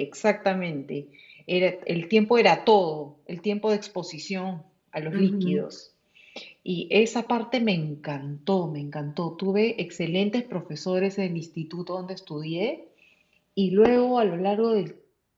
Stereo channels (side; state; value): both; identical; correlation 1.00